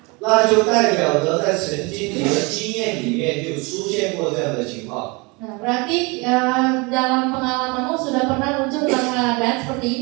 那就代表着在曾经你的经验里面就出现过这样的情况。 Nah, berarti dalam pengalamanmu sudah pernah muncul keadaan seperti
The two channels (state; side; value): quieter; left; 27.9 dB